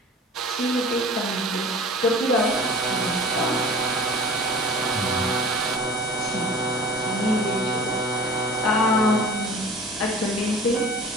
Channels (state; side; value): normal; both; correlation 0.42